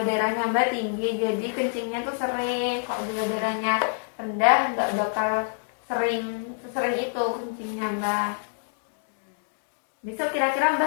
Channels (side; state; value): right; silent; digital silence